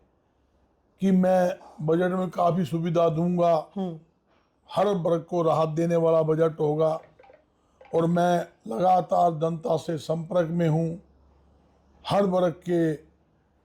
मैं बजट में काफी सुविधा दूंगा, हर वर्ग को राहत देने वाला बजट होगा और मैं लगातार जनता से संपर्क में हूं। हर वर्ग के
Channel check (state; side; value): identical; both; correlation 1.00